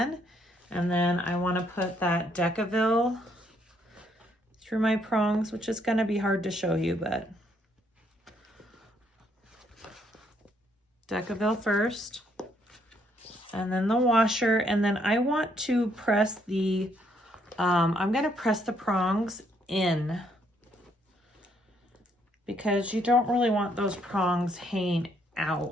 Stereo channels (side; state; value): both; normal; correlation 0.71